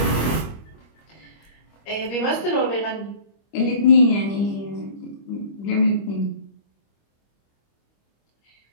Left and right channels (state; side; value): late; right; 25 ms